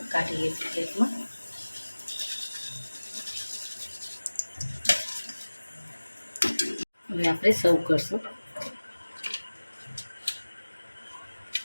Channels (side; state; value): both; inverted; correlation -1.00